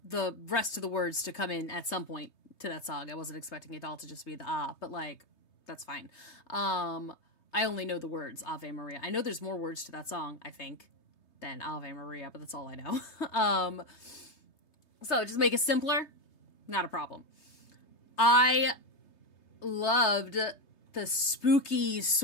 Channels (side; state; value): right; late; 3.3 ms